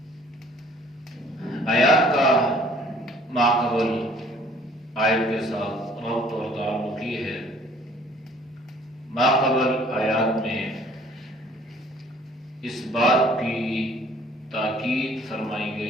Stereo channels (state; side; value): normal; both; correlation 0.56